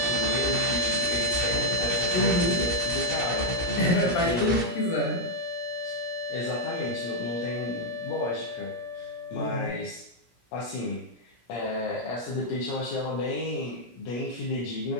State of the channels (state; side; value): late; right; 17 ms